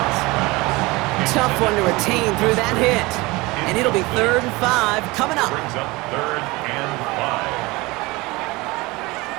Tough one to retain through that hit. And it'll be 3rd and 5 coming up. brings up 3rd and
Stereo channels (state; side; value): quieter; left; 22.7 dB